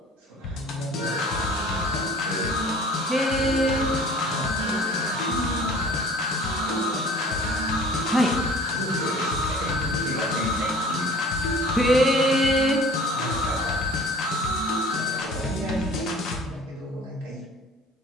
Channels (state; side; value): normal; both; correlation 0.47